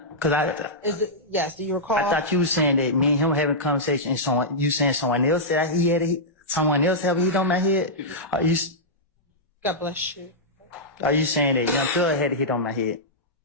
yes, do you recall? I thought you were saying that me and him having a conversation and you saying someone else said he had someone else have a hit on my head? God bless you. Are you saying that Young Thug had a hit on my head?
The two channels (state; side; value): normal; both; correlation -0.11